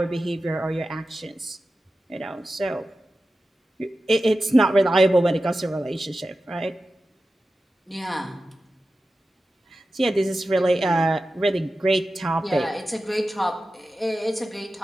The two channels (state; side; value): normal; both; correlation 0.93